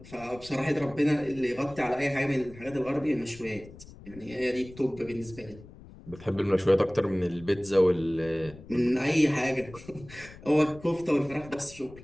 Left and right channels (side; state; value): left; noise; rumble, 19 dB below the sound